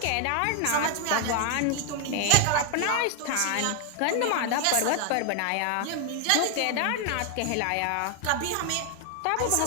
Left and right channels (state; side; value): different; both; correlation 0.00